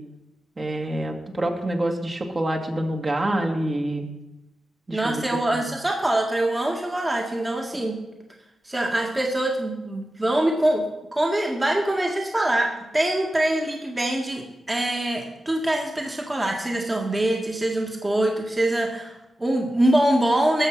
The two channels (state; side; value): normal; both; correlation 0.93